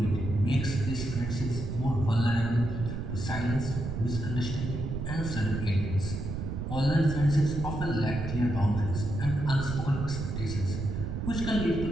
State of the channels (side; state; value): right; noise; rumble, 4 dB below the sound